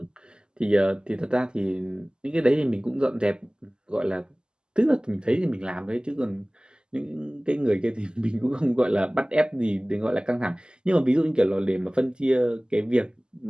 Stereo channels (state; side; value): late; left; 0.047 ms